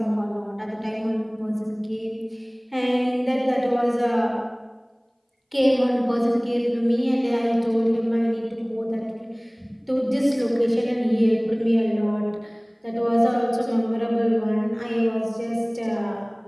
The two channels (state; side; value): identical; both; correlation 1.00